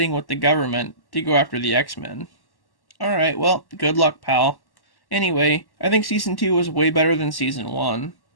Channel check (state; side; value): late; right; 1.1 ms